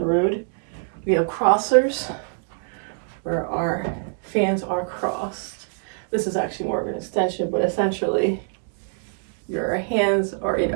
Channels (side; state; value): left; silent; digital silence